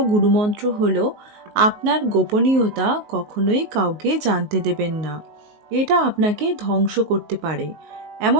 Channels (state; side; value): late; left; 19 ms